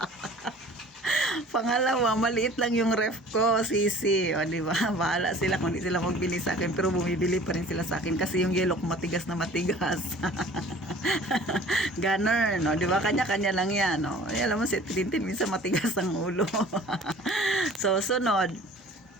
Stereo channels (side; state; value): both; normal; correlation 0.47